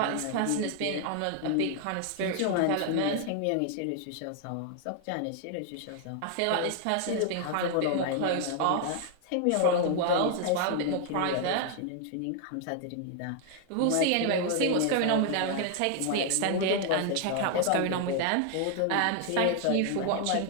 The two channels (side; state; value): both; different; correlation 0.00